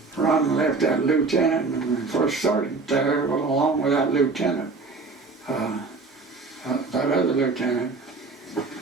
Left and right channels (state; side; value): quieter; left; 4.0 dB